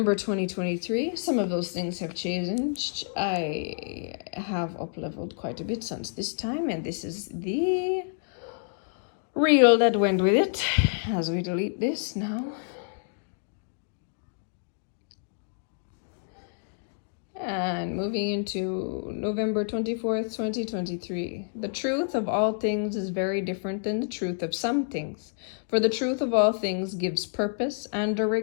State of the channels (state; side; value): silent; right; digital silence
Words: 2023. Some of those things have changed. I have up-leveled quite a bit since this time, and this is the reel that went with it as we delete this now. And moving into November 24th, 2023. The truth of all things is very different than the truth of some things. For the truth of all things gives purpose and